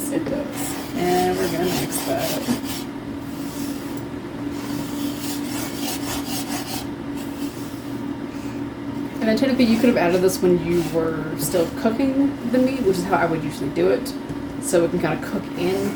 It does. And we're gonna mix that. And then technically you could have added this when you were still cooking the meat, which is how I would usually do it. So it can kind of cook in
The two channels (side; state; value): both; identical; correlation 1.00